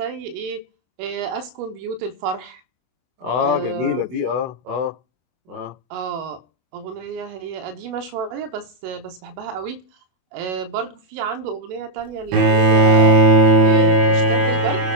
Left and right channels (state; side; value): late; left; 24 ms